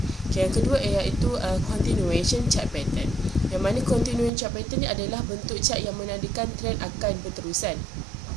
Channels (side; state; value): left; drops out; at 4.3 s